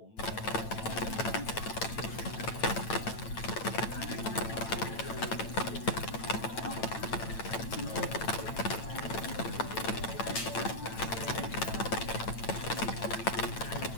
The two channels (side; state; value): right; late; 8.9 ms